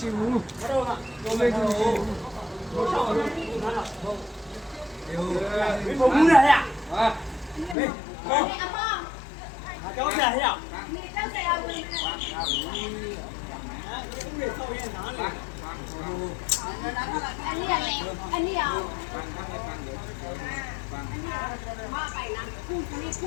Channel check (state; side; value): drops out; right; at 7.8 s